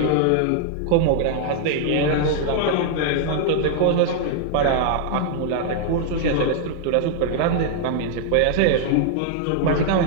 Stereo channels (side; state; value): both; different; correlation 0.00